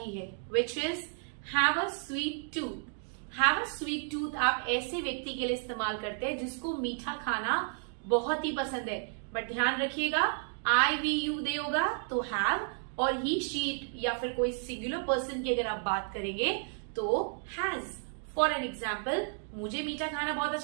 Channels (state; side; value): silent; left; 56 dB below the other